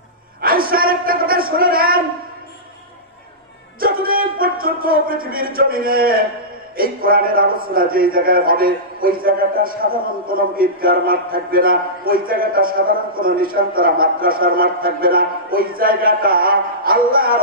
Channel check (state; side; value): normal; both; correlation -0.17